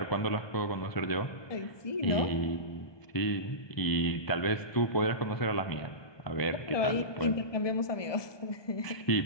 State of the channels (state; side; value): late; right; 1.2 ms